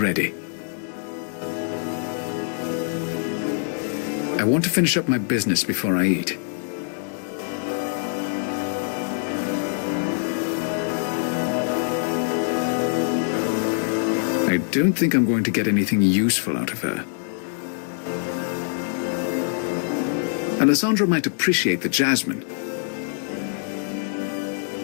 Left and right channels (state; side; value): silent; right; digital silence